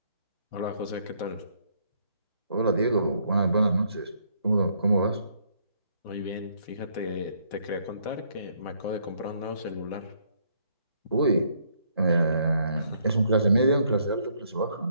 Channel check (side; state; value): both; inverted; correlation -0.69